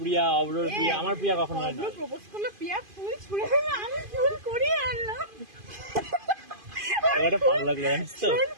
অব্রর প্রিয়া, আমার প্রিয়া কখনো হয় না। অব্র প্রপোজ করলে প্রিয়া ফুল ছুঁড়ে দেবে, আমি ফুল কুড়িয়ে আনলাম। এটা ভালো লাগলো জানিস তো?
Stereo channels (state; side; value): late; left; 2.5 ms